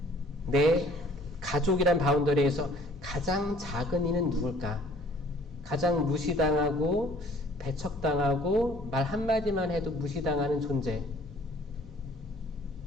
내 가족이란 바운더리에서 가장 작은 이는 누굴까? 가장 무시당하고 배척당하고 말 한마디만 해도 무시당하는 존재.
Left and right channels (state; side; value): normal; both; correlation 0.56